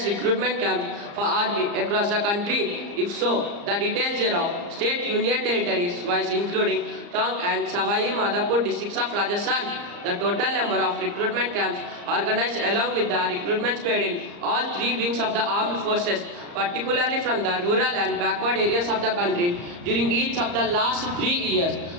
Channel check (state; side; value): late; left; 35 ms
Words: recruitment camps for army across the country. If so, the details thereof, state union territories wise including Tong and Savai Madhapur districts of Rajasthan, the total number of recruitment camps organized along with the recruitments paid in all three wings of the armed forces, particularly from the rural and backward areas of the country during each of the last 3 years,